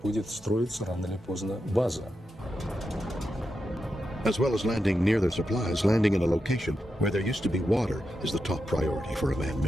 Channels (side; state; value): both; normal; correlation 0.87